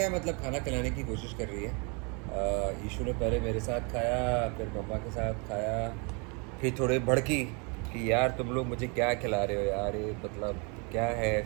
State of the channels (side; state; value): left; quieter; 32.9 dB